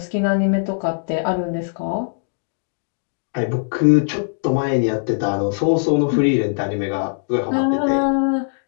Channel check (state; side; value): silent; right; digital silence